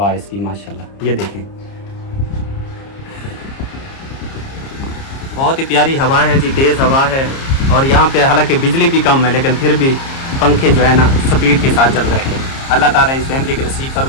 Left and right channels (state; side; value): late; right; 30 ms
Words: है इसकी। माशाल्लाह ये देखें, बहुत ही प्यारी हवा है जी, तेज़ हवा है। और यहाँ पे हालांकि बिजली भी कम है लेकिन फिर भी पंखे जो है ना स्पीड के साथ चल रहे हैं। अल्लाह ताला इस फैमिली के नसीब